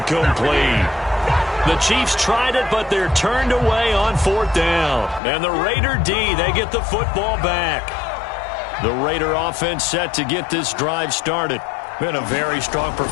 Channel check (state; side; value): drops out; right; at 5.2 s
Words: The Chiefs tried it, but they're turned away on 4th down. And the Raider D, they get the football back. The Raider offense set to get this drive started. Been a very strong